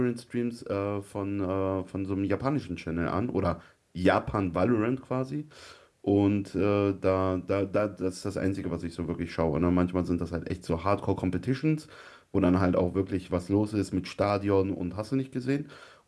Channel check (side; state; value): both; identical; correlation 1.00